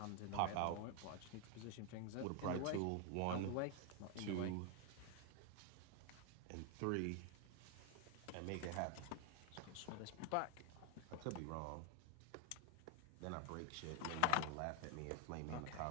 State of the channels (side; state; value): both; different; correlation 0.01